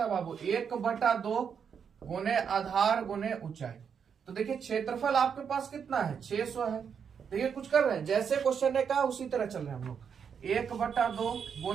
है बाबू? 1/2 गुने आधार गुने ऊंचाई। तो देखिए क्षेत्रफल आपके पास कितना है? 600 है। देखिए कुछ कर रहे हैं, जैसे क्वेश्चन ने कहा उसी तरह चल रहे हैं हम लोग। 1/2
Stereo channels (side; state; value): left; quieter; 7.0 dB